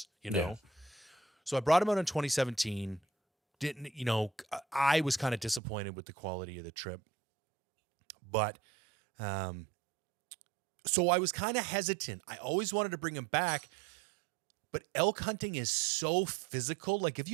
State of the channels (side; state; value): left; drops out; at 5.6 s